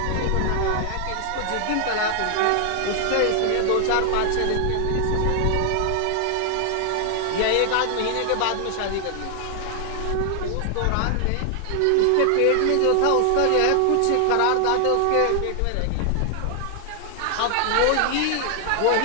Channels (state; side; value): different; both; correlation 0.00